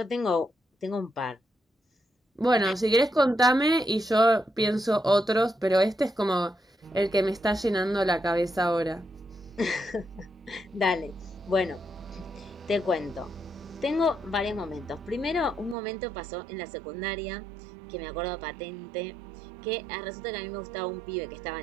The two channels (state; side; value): drops out; left; at 15.8 s